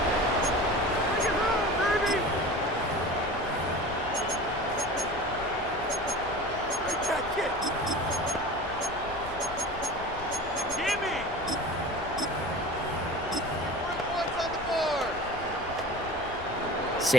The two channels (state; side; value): noise; left; rumble, 16 dB below the sound